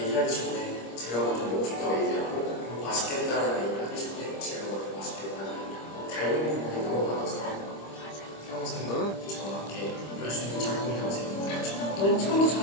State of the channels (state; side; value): late; right; 25 ms